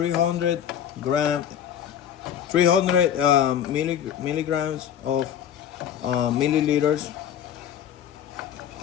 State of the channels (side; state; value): right; quieter; 9.7 dB